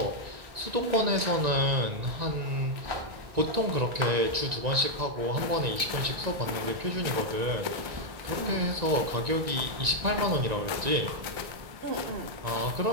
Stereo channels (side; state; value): left; late; 1.9 ms